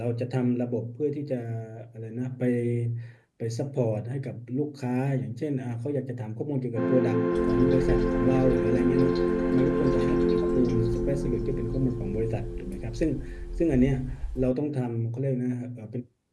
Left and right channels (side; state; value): both; identical; correlation 1.00